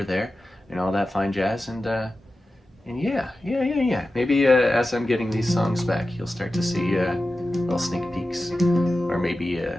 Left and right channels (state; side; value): normal; both; correlation 0.93